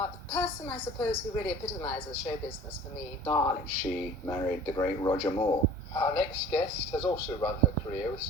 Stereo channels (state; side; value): normal; both; correlation 0.45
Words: the person, I suppose, who really epitomises show business for me. Darling. She married the great Roger Moore. Our next guest has also run her career with